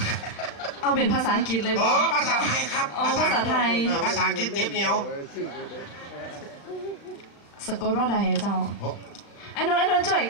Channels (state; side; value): late; right; 36 ms